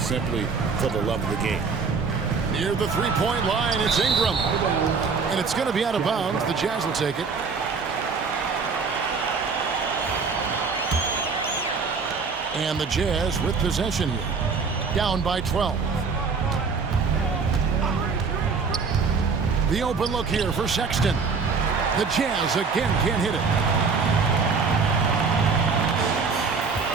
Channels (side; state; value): left; quieter; 5.0 dB